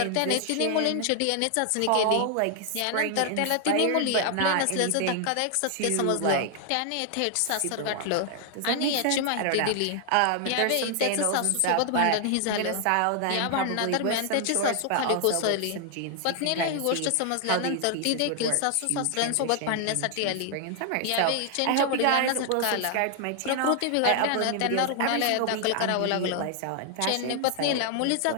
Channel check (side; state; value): both; different; correlation 0.00